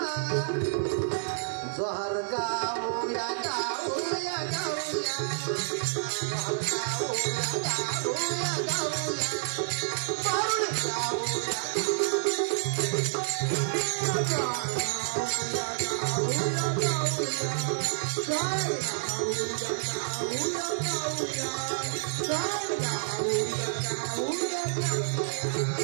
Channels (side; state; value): left; silent; digital silence